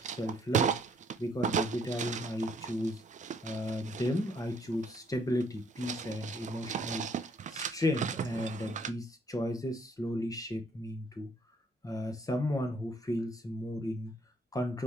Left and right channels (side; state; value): both; normal; correlation 0.66